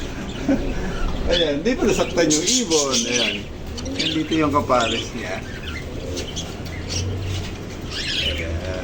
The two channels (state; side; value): identical; both; correlation 1.00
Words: Ayan. Di pa nasaktan yung ibon. Ayan. Dito yung kapares niya.